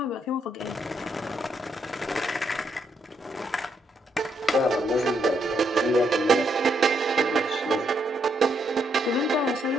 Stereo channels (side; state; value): both; normal; correlation 0.76